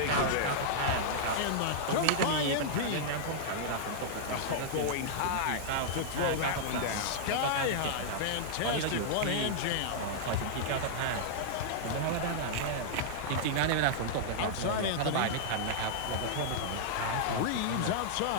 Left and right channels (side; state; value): both; different; correlation -0.02